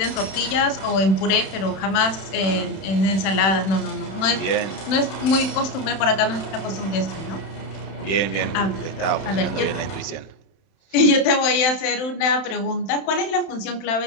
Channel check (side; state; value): right; late; 31 ms